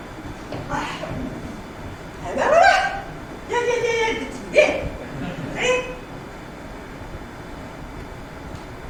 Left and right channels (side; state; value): both; identical; correlation 1.00